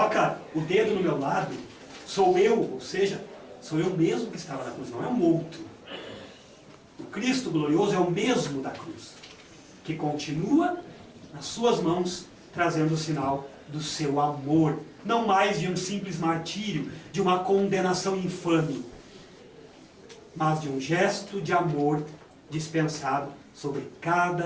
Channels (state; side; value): identical; both; correlation 1.00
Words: o dedo no meu lado, sou eu, ou seja, sou eu mesmo que estava na cruz, não é um outro. O Cristo glorioso é o mesmo da cruz, que continua nas suas mãos, trazendo o sinal do seu amor, não mais de um simples martírio, de uma condenação infame, mas de um gesto de amor dispensado sobre